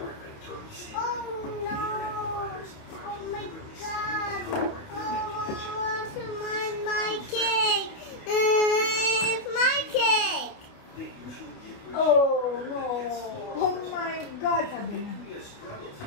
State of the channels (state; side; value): late; right; 29 ms